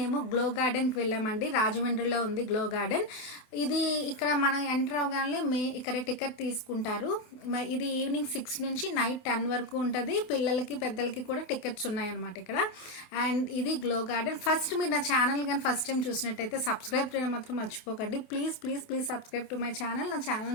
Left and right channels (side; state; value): right; late; 28 ms